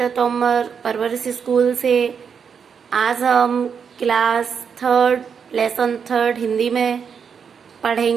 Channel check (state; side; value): quieter; left; 6.8 dB